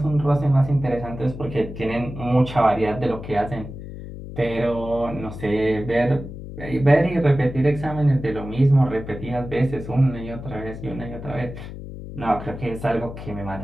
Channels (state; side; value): noise; left; hum, 11 dB below the sound